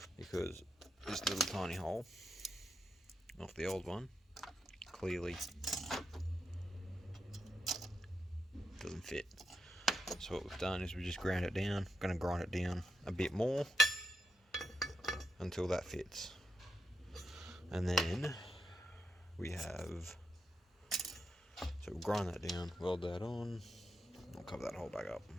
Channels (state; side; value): normal; both; correlation 0.84